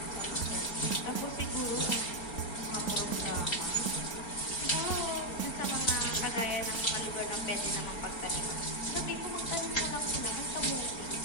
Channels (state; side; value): late; right; 4.3 ms